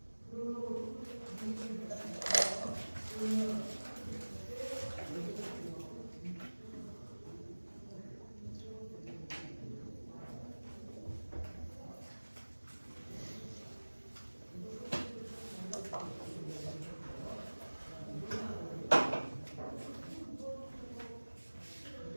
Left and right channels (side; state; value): both; inverted; correlation -1.00